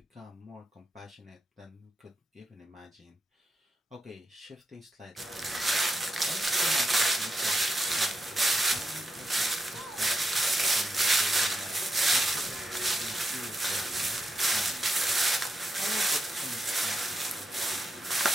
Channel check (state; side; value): normal; both; correlation 0.85